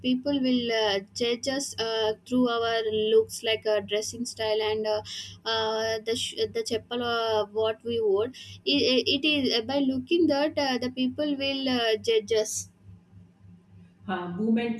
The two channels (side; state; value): both; identical; correlation 1.00